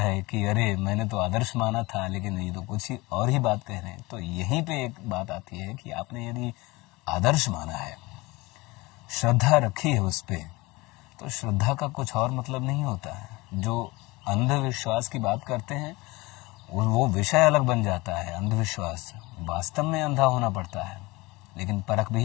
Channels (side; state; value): right; quieter; 22.5 dB